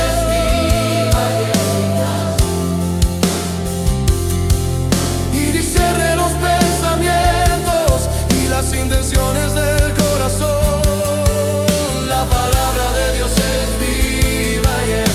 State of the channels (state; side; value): identical; both; correlation 1.00